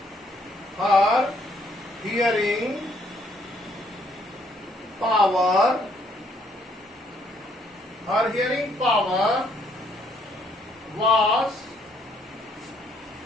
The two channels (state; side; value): normal; both; correlation 0.68